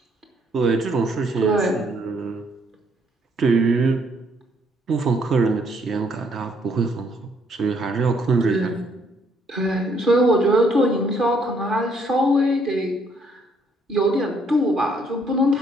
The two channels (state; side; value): normal; both; correlation 0.68